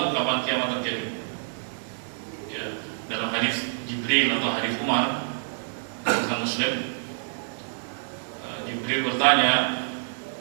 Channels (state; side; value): silent; left; 58 dB below the other